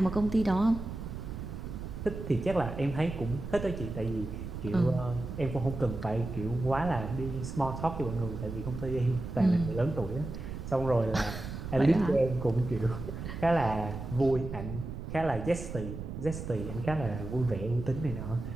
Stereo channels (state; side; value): noise; right; rumble, 8 dB below the sound